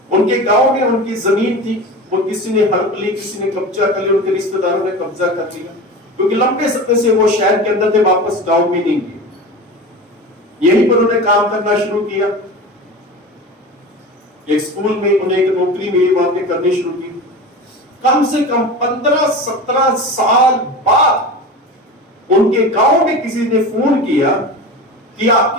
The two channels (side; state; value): both; normal; correlation 0.30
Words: उनके गांव में उनकी जमीन थी, वो किसी ने हड़प ली, किसी ने कब्जा कर लिया, उनके रिश्तेदारों ने कब्जा कर लिया, क्योंकि लंबे समय से वो शहर के अंदर थे, वापस गांव में नहीं गए। यहीं पर उन्होंने काम करना शुरू किया। एक स्कूल में उन्हें एक नौकरी मिली, वहां पे करनी शुरू की। कम से कम 15-17 साल बाद उनके गांव में किसी ने फोन किया कि